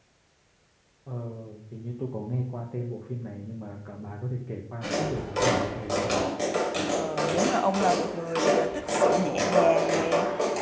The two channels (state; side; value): identical; both; correlation 1.00